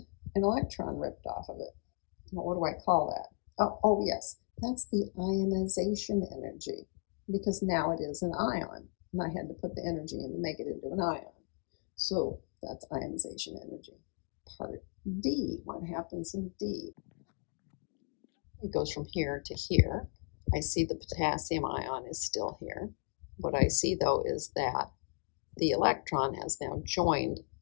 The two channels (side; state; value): right; quieter; 38.5 dB